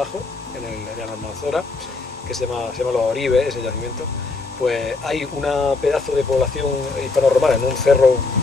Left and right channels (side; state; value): right; quieter; 3.8 dB